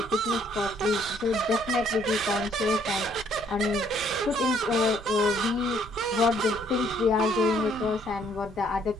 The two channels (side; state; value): right; noise; rumble, 19 dB below the sound